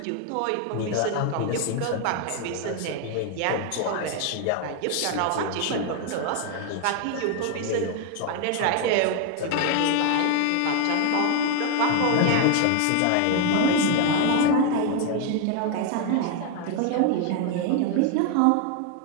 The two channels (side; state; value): both; different; correlation 0.01